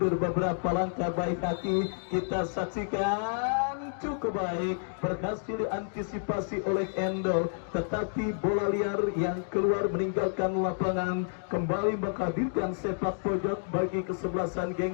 beberapa langkah baik hati, kita saksikan cukup baik, berhasil diantisipasi oleh Endo, tetapi bola liar yang keluar meninggalkan lapangan kembali menghadirkan sepak pojok bagi kesebelasan geng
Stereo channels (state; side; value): silent; right; digital silence